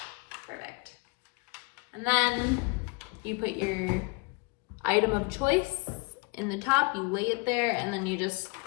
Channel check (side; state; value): right; quieter; 29.8 dB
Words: Perfect. And then you put your item of choice in the top, you lay it there, and then you just